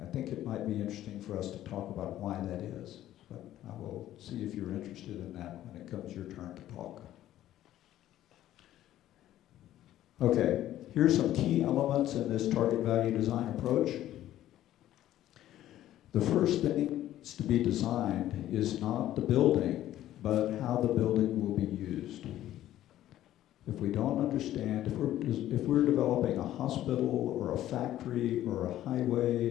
I think it might be interesting for us to talk about why that is, but I will see if you're interested in that when it comes your turn to talk. Okay, here's some key elements in this target value design approach. The first thing to be designed is not the building, but how the building will be used. If we don't understand, if we're developing a hospital or a factory or a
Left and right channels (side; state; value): right; quieter; 13.1 dB